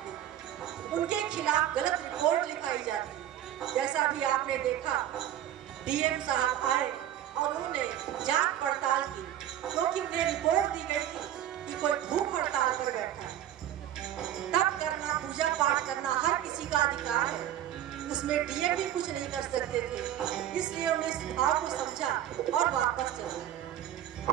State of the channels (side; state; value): left; quieter; 11.7 dB